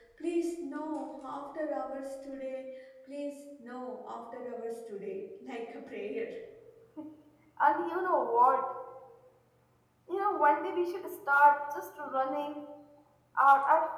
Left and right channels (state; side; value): identical; both; correlation 1.00